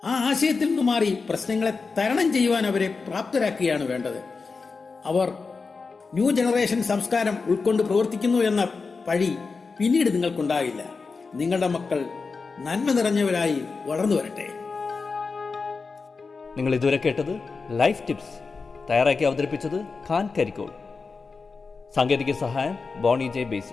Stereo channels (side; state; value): right; quieter; 4.5 dB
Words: ആ ആശയത്തിൽ നിന്ന് മാറി പ്രശ്നങ്ങളെ തരണം ചെയ്യുവാൻ അവരെ പ്രാപ്തരാക്കുകയാണ് വേണ്ടത്. അവർ ന്യൂ ജനറേഷൻ സംസ്കാരം ഉൾക്കൊണ്ട് പ്രവർത്തിക്കുന്നു എന്ന പഴി പിന്നീട് നിങ്ങൾക്കുണ്ടാകില്ല. നിങ്ങളുടെ മക്കൾ നന്മ നിറഞ്ഞവരായി വളർന്നു വരട്ടെ. നിങ്ങൾ ഇതുവരെ കേട്ടത് ലൈഫ് ടിപ്സ് തയ്യാറാക്കി അവതരിപ്പിച്ചത് ഖാൻ കരിക്കോൾ. സാങ്കേതിക സഹായം ബോണി ജെ